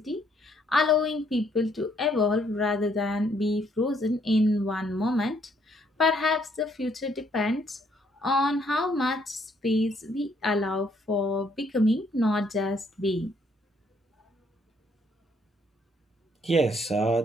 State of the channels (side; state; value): both; normal; correlation 0.68